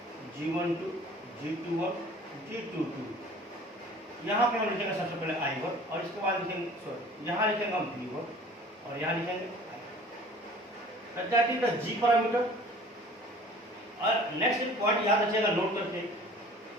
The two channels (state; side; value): normal; both; correlation 0.47